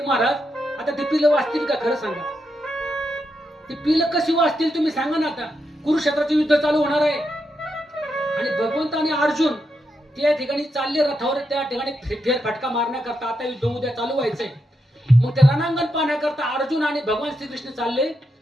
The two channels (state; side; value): normal; both; correlation 0.83